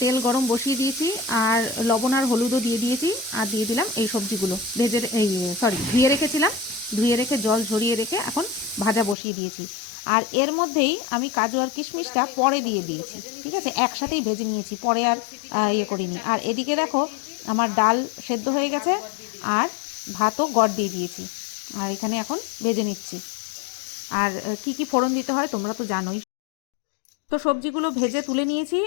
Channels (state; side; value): drops out; right; at 9.2 s